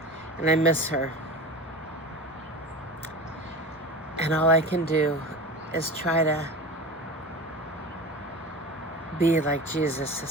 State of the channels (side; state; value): both; normal; correlation 0.31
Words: And I miss her. And all I can do is try to be like Jesus to